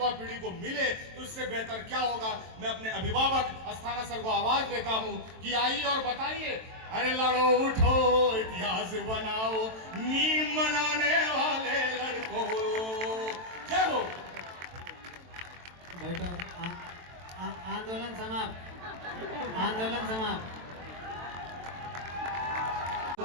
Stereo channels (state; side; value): late; left; 23 ms